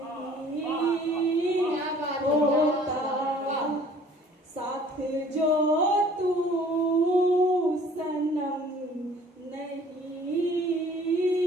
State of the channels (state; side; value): normal; both; correlation 0.53